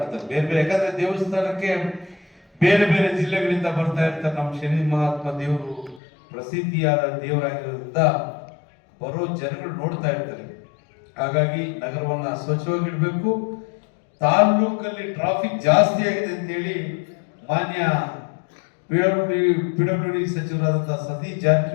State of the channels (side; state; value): right; drops out; at 6.0 s